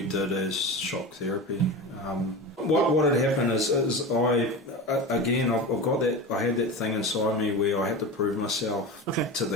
did as shock therapy. What had happened is I've got that, I had that thing inside me where I had to prove myself to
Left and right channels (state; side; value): normal; both; correlation 0.27